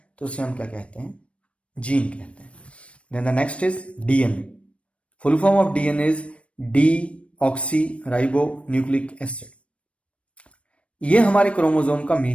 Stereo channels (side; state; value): right; late; 0.061 ms